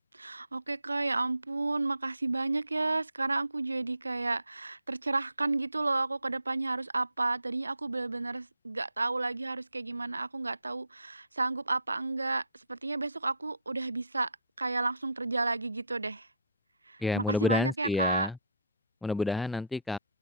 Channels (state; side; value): inverted; both; correlation -0.57